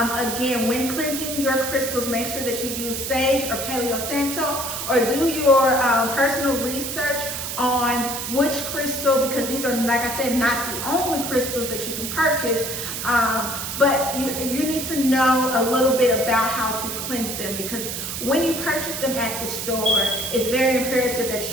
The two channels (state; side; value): noise; right; hiss, 5 dB below the sound